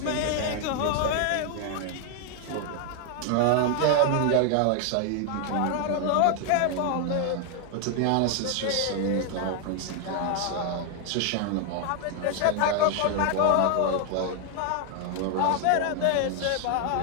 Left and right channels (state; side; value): different; both; correlation 0.00